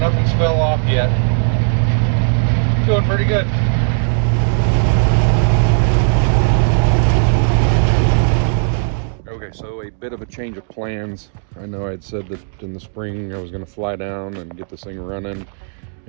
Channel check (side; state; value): left; silent; digital silence